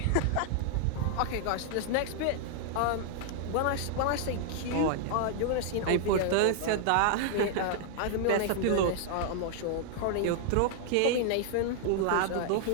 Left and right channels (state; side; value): different; both; correlation -0.01